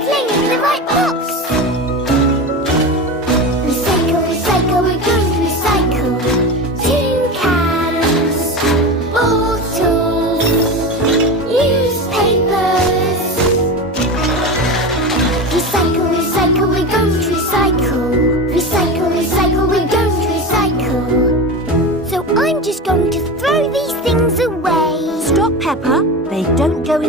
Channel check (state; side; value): normal; both; correlation 0.25